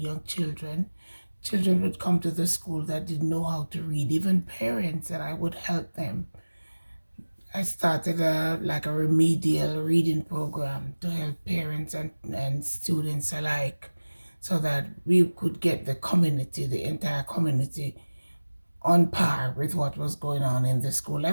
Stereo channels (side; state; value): both; inverted; correlation -1.00